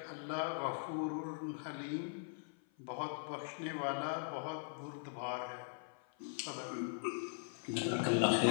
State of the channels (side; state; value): right; silent; 51 dB below the other